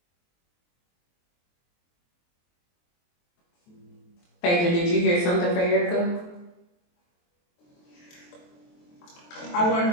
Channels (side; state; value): right; late; 23 ms